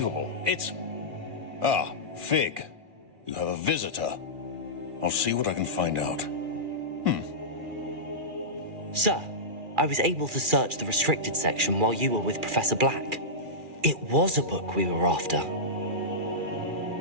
It's... Ah, Fig. You have a visitor. I'll see what I can find out. Sir, I was able to search the restricted section while you were with Professor Black. It was a book we were after.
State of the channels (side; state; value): left; late; 2.4 ms